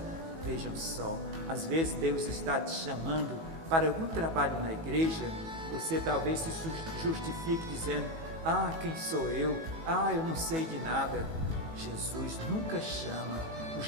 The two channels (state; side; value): late; left; 18 ms